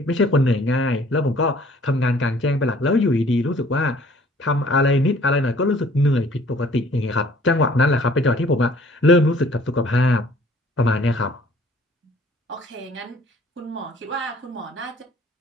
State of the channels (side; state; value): both; normal; correlation 0.56